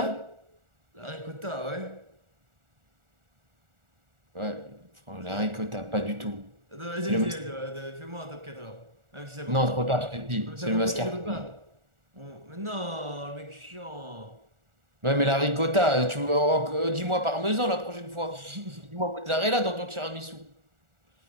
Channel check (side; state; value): left; late; 1.4 ms